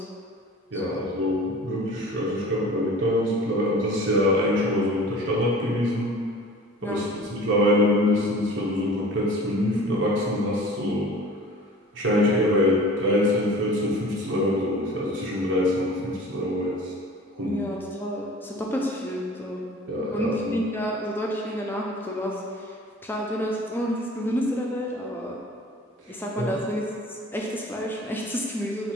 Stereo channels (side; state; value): both; normal; correlation 0.43